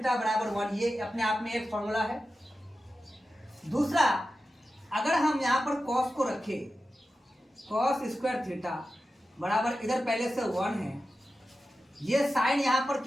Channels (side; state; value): both; normal; correlation 0.92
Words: बराबर 1, ये अपने आप में एक फॉर्मूला है। दूसरा, अगर हम यहां पर कॉस को रखें, कॉस स्क्वायर थीटा बराबर इधर पहले से 1 है, ये साइन यहां पर